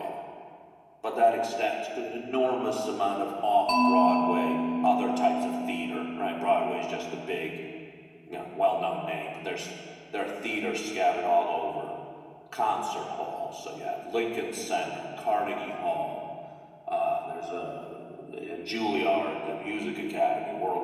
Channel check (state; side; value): identical; both; correlation 1.00